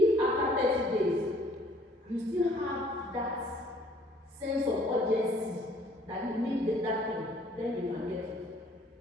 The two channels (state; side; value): normal; both; correlation 0.59